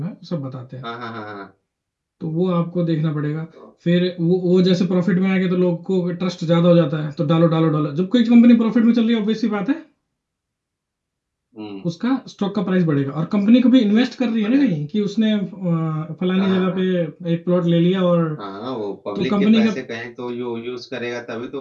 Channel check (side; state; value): both; identical; correlation 1.00